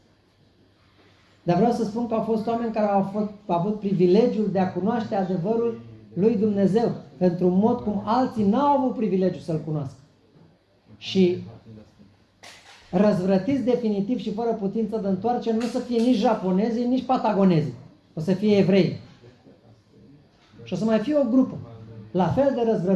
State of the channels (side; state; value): both; identical; correlation 1.00